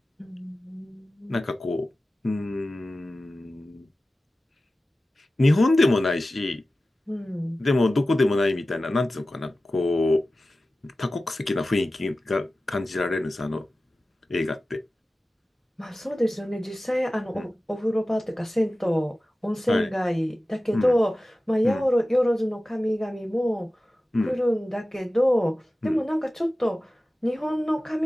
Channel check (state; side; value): normal; both; correlation 0.95